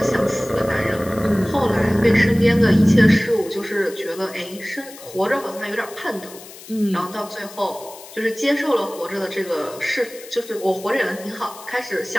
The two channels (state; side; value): noise; left; hiss, 17 dB below the sound